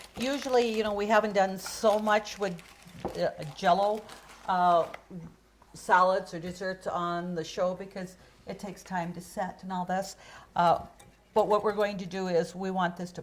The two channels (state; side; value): identical; both; correlation 1.00